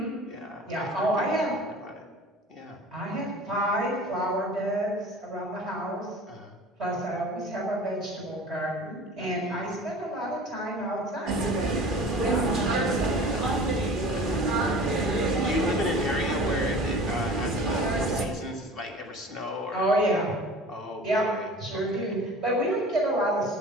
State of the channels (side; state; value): both; normal; correlation 0.41